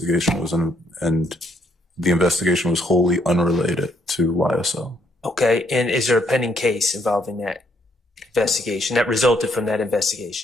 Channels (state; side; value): normal; both; correlation 0.71